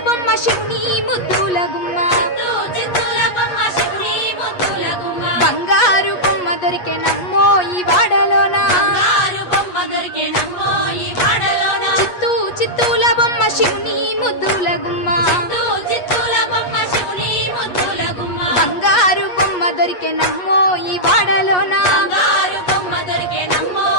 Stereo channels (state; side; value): late; right; 8.3 ms